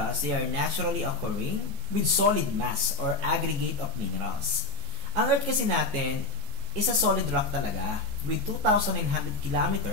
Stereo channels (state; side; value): late; left; 14 ms